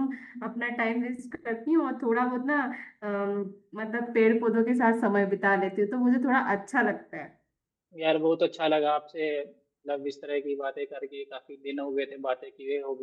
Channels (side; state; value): both; identical; correlation 1.00